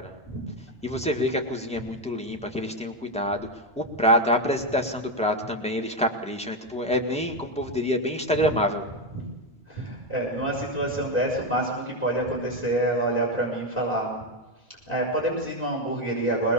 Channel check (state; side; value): normal; both; correlation 0.08